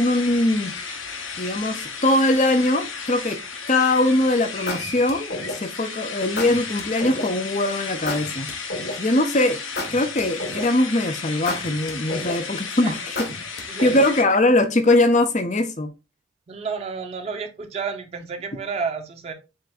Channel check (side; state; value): both; normal; correlation 0.38